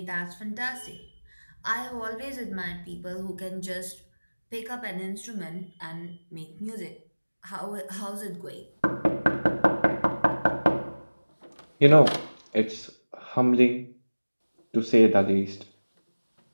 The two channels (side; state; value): both; inverted; correlation -1.00